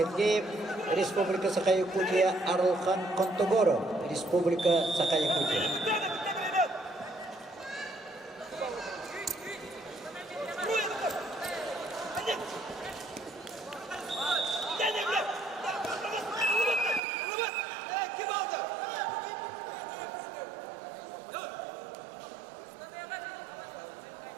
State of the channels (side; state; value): left; drops out; at 17.0 s